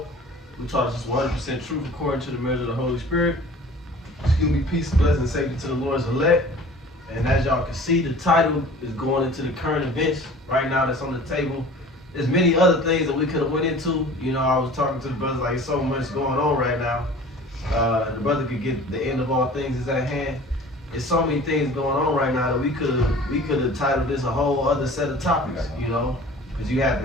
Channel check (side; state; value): both; normal; correlation 0.44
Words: who taught us 100% truth according to the measure of the Holy Spirit. Excuse me, peace, blessing, and safety to the Lord's elect. And as y'all can see, the title is going into the current events right now that's on the table. There's many other things that we could have went into. You know, I was talking to the brothers like, so much going on right now. The brother could get the end of all things is at hand. There's so many things going on right now that we could have titled this a whole other set of topics, you know, because you had